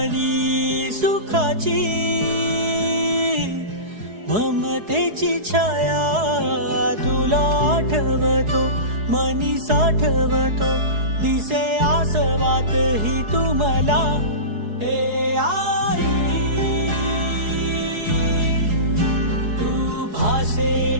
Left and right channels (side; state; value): left; late; 4.7 ms